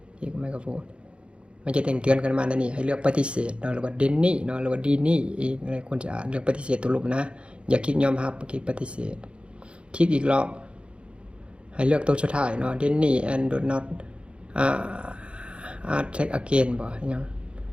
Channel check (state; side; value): late; left; 0.058 ms